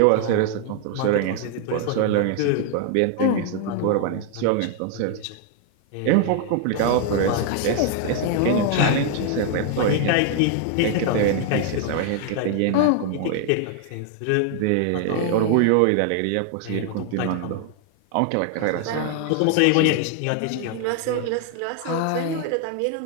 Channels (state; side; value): different; both; correlation 0.00